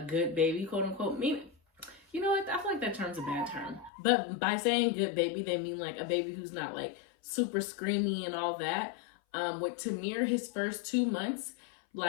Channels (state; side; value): drops out; right; at 3.9 s